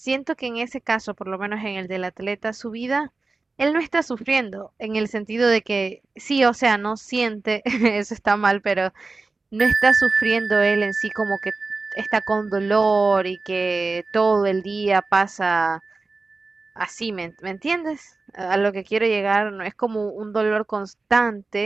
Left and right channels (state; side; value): quieter; left; 3.7 dB